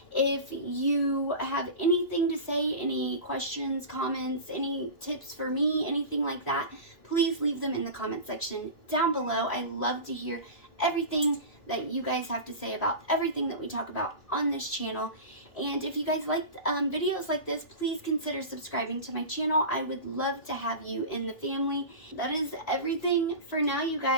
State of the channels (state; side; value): late; right; 3.1 ms